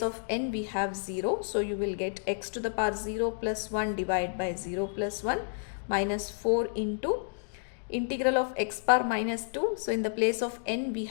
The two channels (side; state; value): right; silent; digital silence